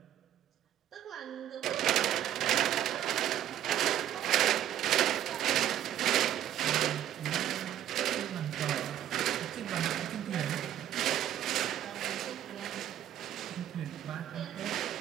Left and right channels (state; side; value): quieter; left; 11.4 dB